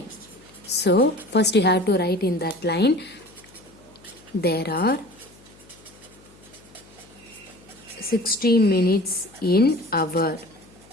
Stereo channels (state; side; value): noise; left; hum, 26 dB below the sound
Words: so first you have to write in that line, there are 60 minutes in hour.